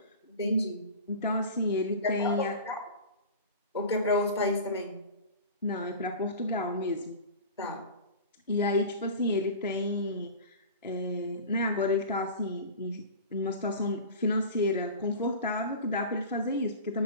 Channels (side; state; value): both; inverted; correlation -0.34